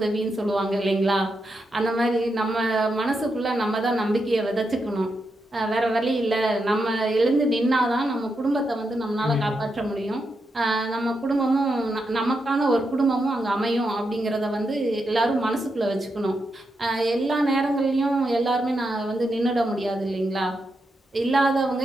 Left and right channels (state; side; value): normal; both; correlation 0.85